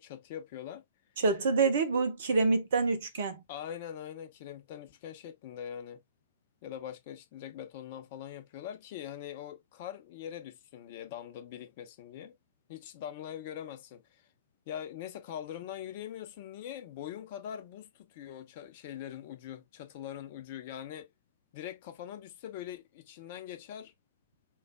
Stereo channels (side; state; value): both; inverted; correlation -0.56